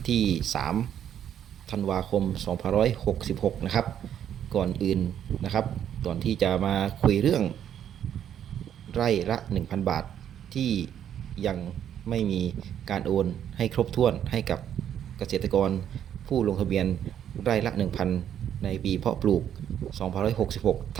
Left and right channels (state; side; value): quieter; left; 9.8 dB